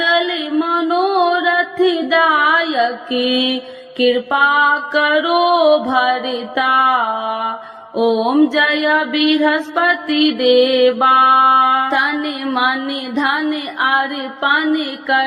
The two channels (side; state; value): both; identical; correlation 1.00